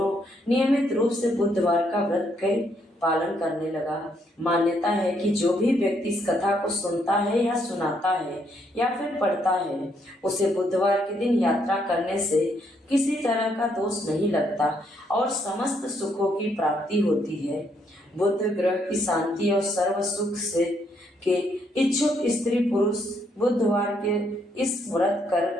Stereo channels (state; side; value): normal; both; correlation 0.73